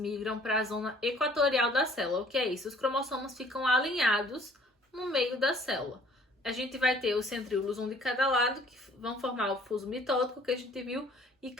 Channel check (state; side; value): normal; both; correlation 0.57